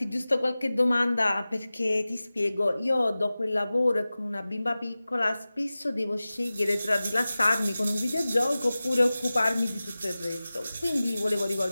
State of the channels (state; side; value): inverted; both; correlation -0.97